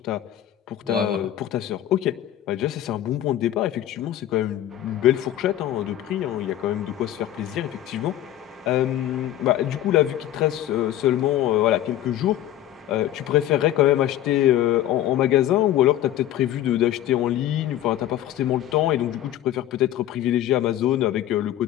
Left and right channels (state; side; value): quieter; right; 12.5 dB